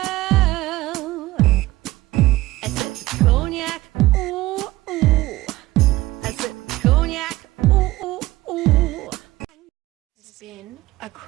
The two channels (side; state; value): left; quieter; 17.9 dB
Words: I said cognac, ooh, ooh. I said cognac, ooh, ooh, ooh. It's been a